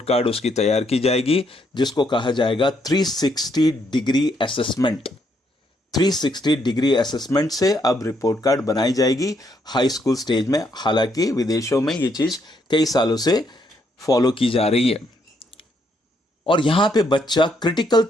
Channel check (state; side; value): normal; both; correlation 0.74